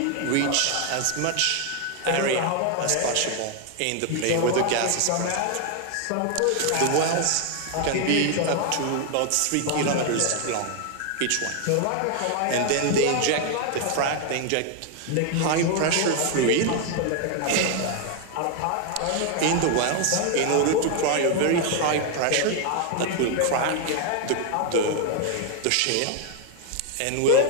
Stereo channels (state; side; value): different; both; correlation 0.01